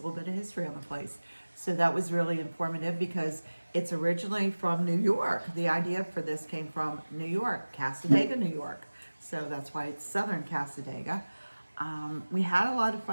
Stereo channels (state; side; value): inverted; both; correlation -1.00